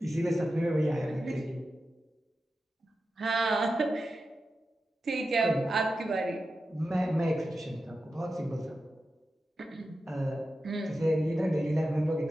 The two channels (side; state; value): both; normal; correlation 0.91